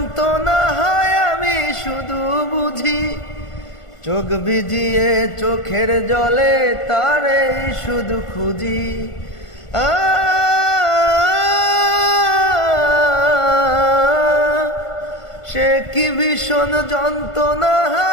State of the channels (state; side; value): late; right; 1.5 ms